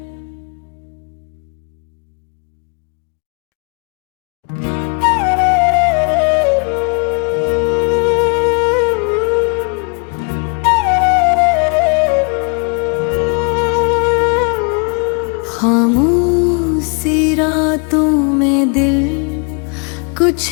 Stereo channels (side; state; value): right; quieter; 36.8 dB